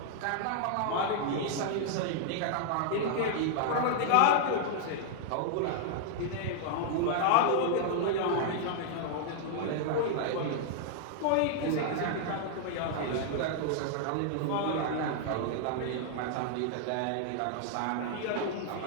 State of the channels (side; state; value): both; different; correlation -0.01